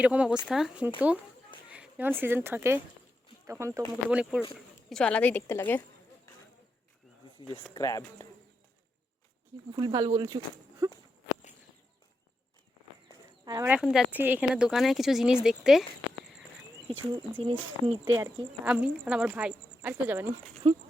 অবস্থা, কিন্তু যখন সিজন থাকে তখন তো মুকুটমণিপুর কিছু আলাদাই দেখতে লাগে। ভুল ভাল বলছু। আর আমরা এখন যাচ্ছি এখানে দোকানে কিছু জিনিস দেখতে, কিছু জিনিস নিতে আর কি। আমি আর আমার ভাই, আর কেউ যাবে না।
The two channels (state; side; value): normal; both; correlation 0.86